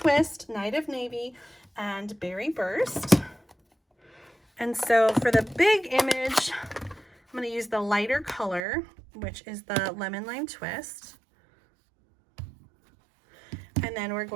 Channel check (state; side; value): drops out; left; at 8.6 s